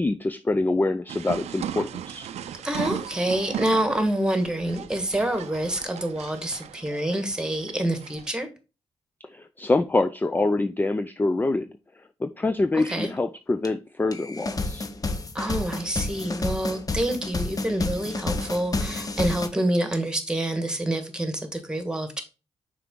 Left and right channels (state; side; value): normal; both; correlation 0.83